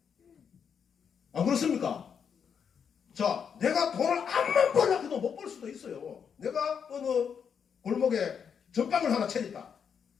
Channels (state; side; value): quieter; right; 7.1 dB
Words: 안 그렇습니까? 자, 내가 돈을 암만 벌려고 해도 못 벌 수도 있어요. 내가 어느 골목에 전빵을 하나 차렸다.